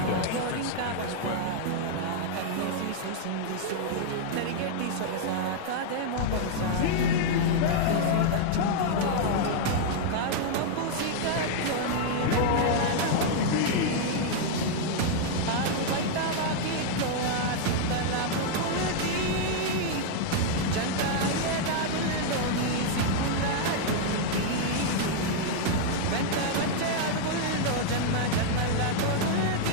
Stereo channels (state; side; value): different; both; correlation -0.01